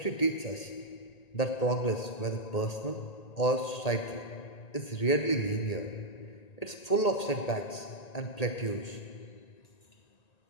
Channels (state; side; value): late; right; 1.8 ms